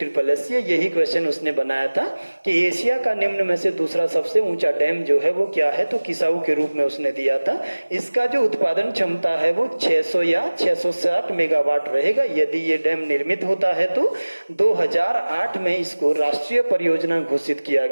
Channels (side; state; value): both; inverted; correlation -1.00